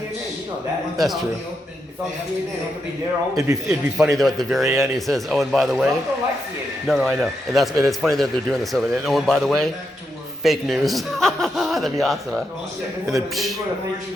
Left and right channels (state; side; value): normal; both; correlation 0.83